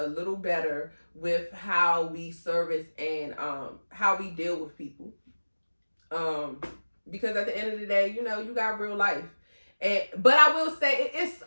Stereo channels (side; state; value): both; inverted; correlation -1.00